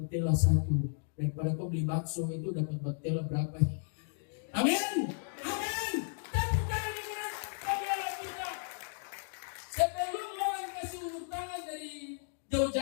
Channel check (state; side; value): silent; right; digital silence